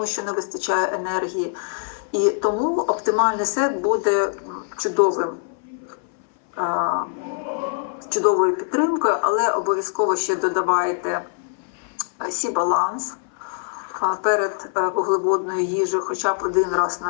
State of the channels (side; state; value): right; silent; 58 dB below the other